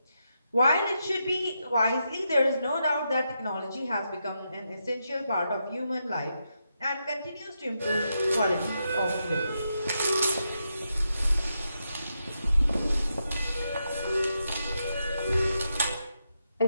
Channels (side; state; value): both; inverted; correlation -0.84